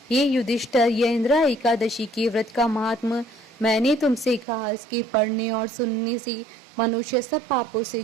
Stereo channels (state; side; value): drops out; left; at 4.5 s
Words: हे युधिष्ठिर, यह इंदिरा एकादशी के व्रत का महात्म मैंने तुमसे कहा। इसके पढ़ने और सुनने से मनुष्य सब पापों से